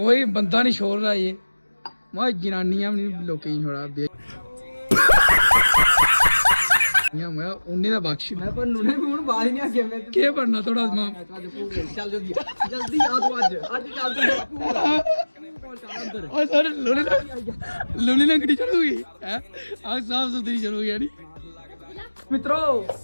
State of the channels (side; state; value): both; inverted; correlation -1.00